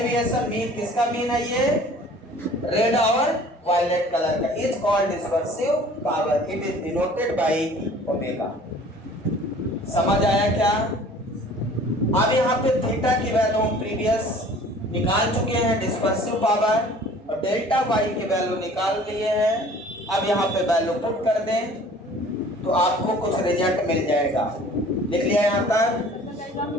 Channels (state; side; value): normal; both; correlation 0.49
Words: मीन, किसका मीन है ये? रेड और वायलेट कलर का। Is called dispersive power, it is denoted by omega. समझ आया क्या? अब यहाँ पे थीटा की वैल्यू हम प्रीवियस निकाल चुके हैं, डिस्पर्सिव पावर, और डेल्टा वाई की वैल्यू निकाल लिए हैं। अब यहाँ पे वैल्यू पुट कर दें तो आपको कुछ रिजल्ट मिल जाएगा। लिख लिया यहाँ तक?